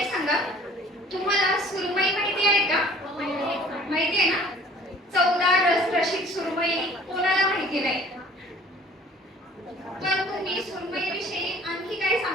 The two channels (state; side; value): normal; both; correlation 0.51